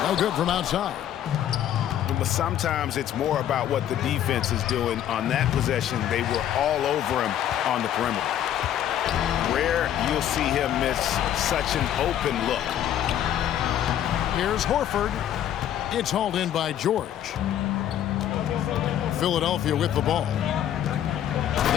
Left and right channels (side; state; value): right; quieter; 10.9 dB